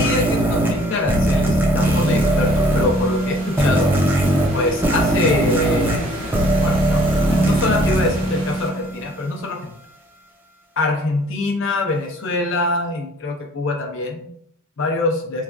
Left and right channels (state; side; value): normal; both; correlation 0.56